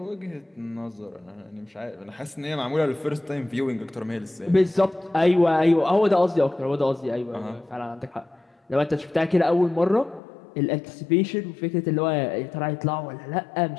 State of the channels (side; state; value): right; drops out; at 10.2 s